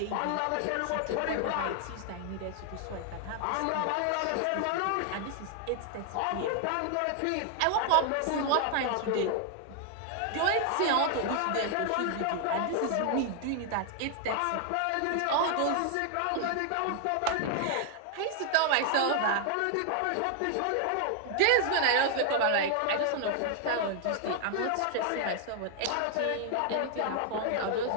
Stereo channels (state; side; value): different; both; correlation 0.00